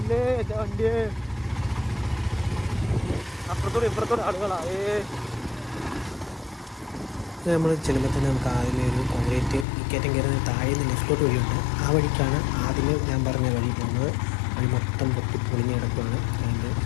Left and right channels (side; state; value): right; drops out; at 9.7 s